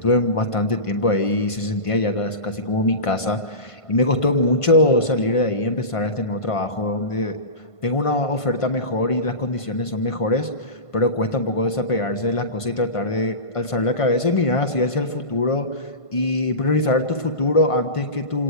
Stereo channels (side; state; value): right; late; 1.5 ms